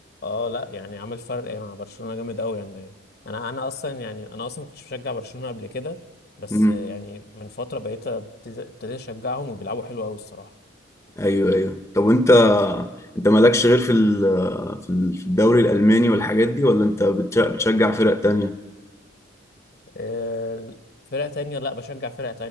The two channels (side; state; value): both; normal; correlation 0.75